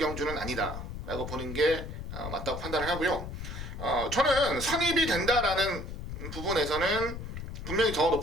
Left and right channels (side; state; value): left; noise; rumble, 8 dB below the sound